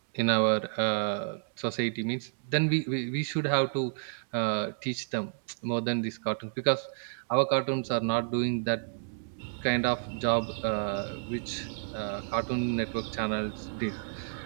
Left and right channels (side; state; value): left; silent; digital silence